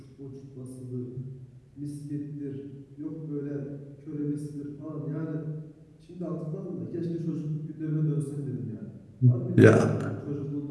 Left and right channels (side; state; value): both; identical; correlation 1.00